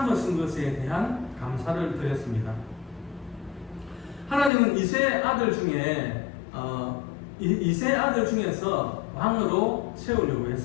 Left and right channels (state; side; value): drops out; right; at 4.5 s